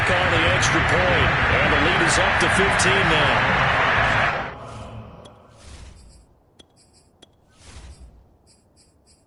on the extra point. And the lead is up to 15 now.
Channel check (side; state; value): both; identical; correlation 1.00